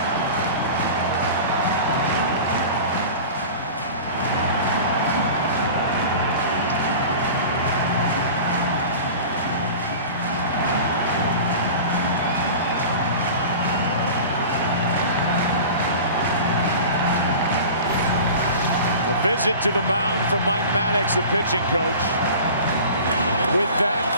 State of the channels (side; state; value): both; inverted; correlation -0.37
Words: visit to the mound from Mike Maddox, the pitching coach. With that,